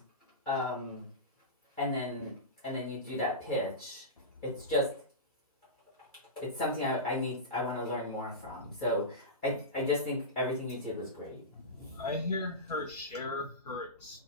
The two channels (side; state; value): both; normal; correlation -0.18